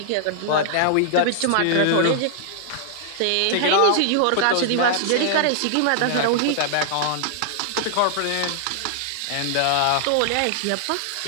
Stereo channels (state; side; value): different; both; correlation -0.01